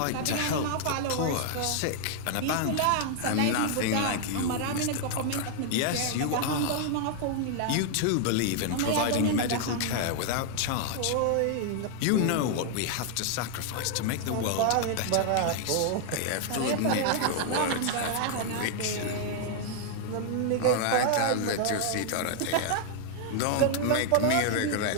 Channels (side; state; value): both; different; correlation 0.00